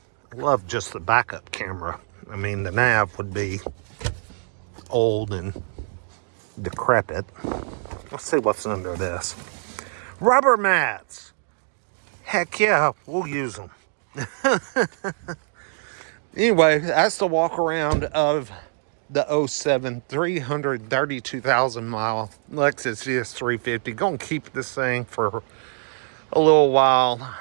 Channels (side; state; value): left; silent; digital silence